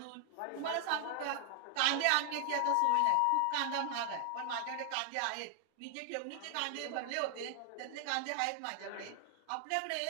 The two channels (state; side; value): different; both; correlation 0.00